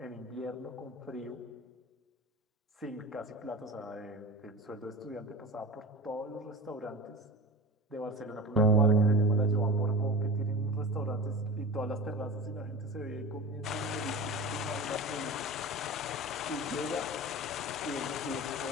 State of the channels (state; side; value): normal; both; correlation 0.32